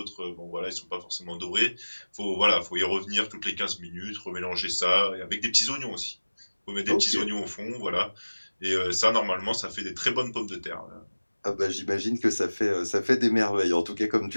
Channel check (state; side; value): inverted; both; correlation -1.00